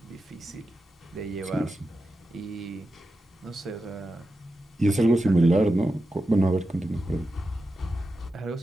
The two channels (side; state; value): both; normal; correlation 0.90